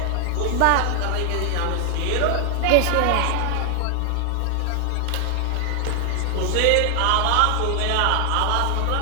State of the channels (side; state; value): both; different; correlation 0.00